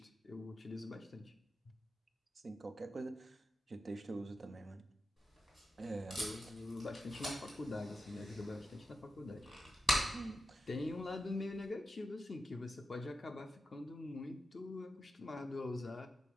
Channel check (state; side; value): normal; both; correlation 0.90